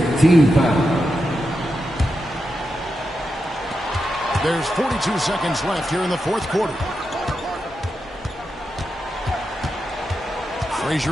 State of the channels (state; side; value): normal; both; correlation 0.87